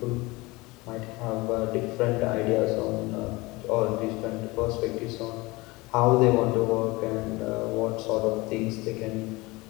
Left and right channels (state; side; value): quieter; right; 22.8 dB